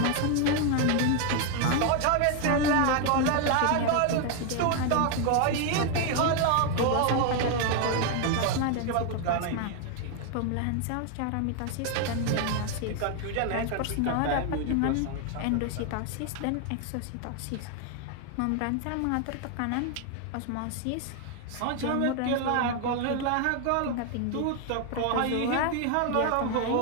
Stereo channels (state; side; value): different; both; correlation 0.01